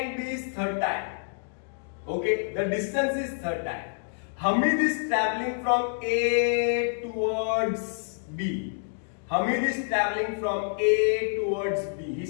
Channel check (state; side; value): silent; right; digital silence